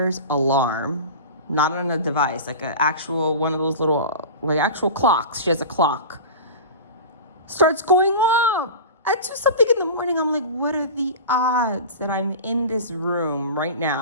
alarm, not on a device, like an actual, one of those little, like actual clocks. She has a clock. Starts going off at 2-something in the morning. I'm like, what are the odds that I'm in this room right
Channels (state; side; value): inverted; both; correlation -0.31